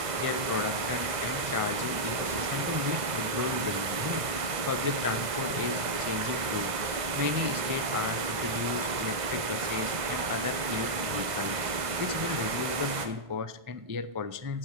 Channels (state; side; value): late; left; 1.5 ms